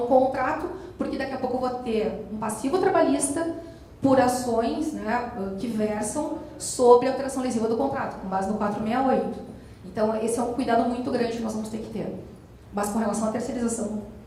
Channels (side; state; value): both; identical; correlation 1.00